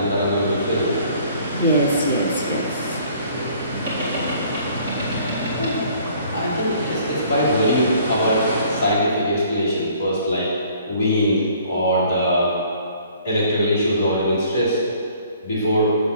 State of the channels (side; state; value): both; inverted; correlation -0.57